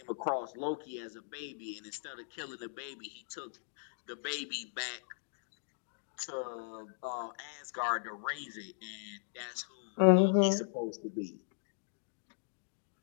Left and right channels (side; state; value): right; silent; digital silence